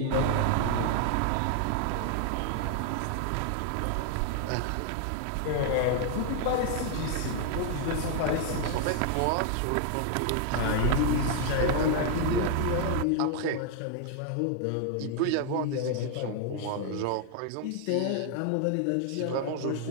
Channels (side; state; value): both; different; correlation 0.00